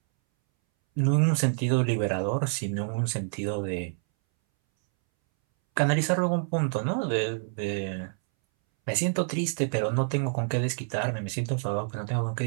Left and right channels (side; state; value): left; silent; 60 dB below the other